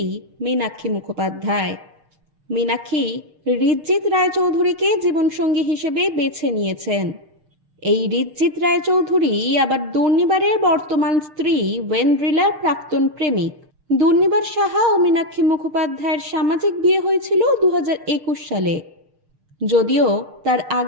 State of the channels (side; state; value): left; late; 6.6 ms